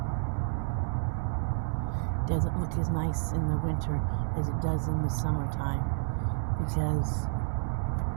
Doesn't look as nice in the winter as it does in the summertime because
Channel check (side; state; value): left; silent; 58 dB below the other